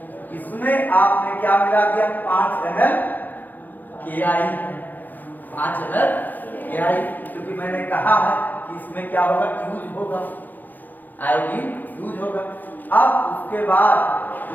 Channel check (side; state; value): right; late; 0.085 ms